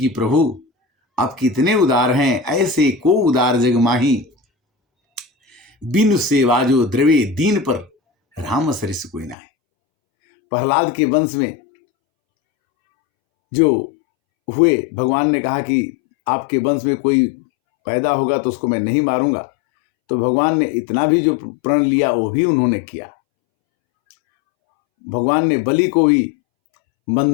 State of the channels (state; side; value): drops out; right; at 9.3 s